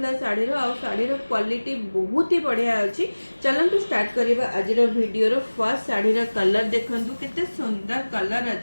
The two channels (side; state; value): both; inverted; correlation -1.00